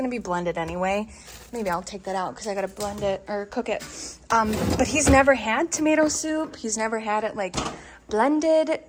be blended anyway. Maybe I'll take that out because I gotta blend it or cook it. But he's never had tomato soup. He's never had it like blended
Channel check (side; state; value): both; identical; correlation 1.00